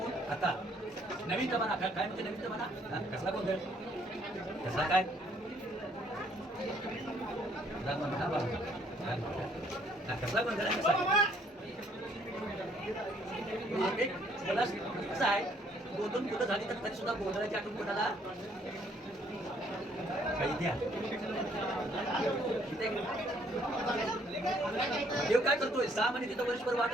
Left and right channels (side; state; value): both; normal; correlation 0.65